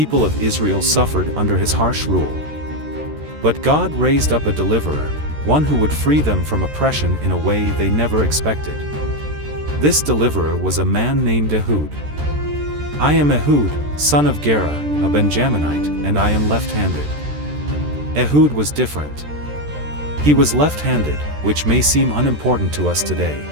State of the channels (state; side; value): late; left; 13 ms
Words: of Israel suffered under his harsh rule. But God raised up a deliverer, one who would free them from oppression in a way they never expected. This deliverer was a man named Ehud. "I am Ehud, son of Gera, a Benjaminite, and I am left-handed." Ehud was different. He was left-handed, which may seem unimportant to us today,